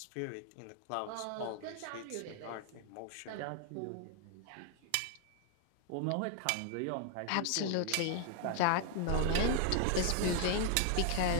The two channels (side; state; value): both; different; correlation 0.00